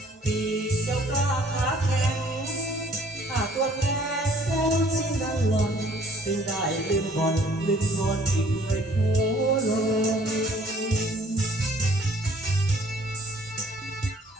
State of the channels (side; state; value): both; normal; correlation 0.58